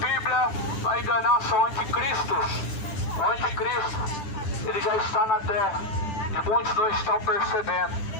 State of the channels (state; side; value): late; right; 10 ms